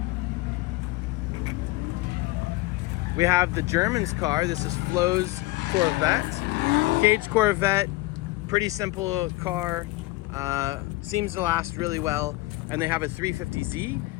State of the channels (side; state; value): right; quieter; 20.1 dB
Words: we have the German's car. This is Flo's Corvette. Cage Corvette, pretty simple car. Seems to last really well. And they have a 350Z,